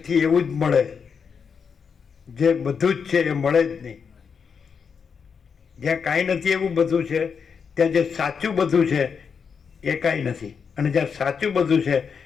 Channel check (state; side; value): quieter; right; 6.3 dB